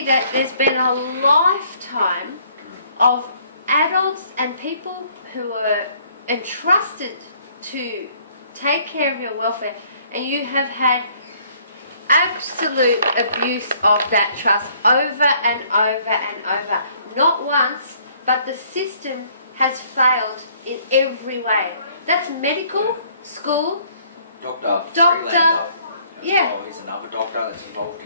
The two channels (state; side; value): inverted; both; correlation -0.62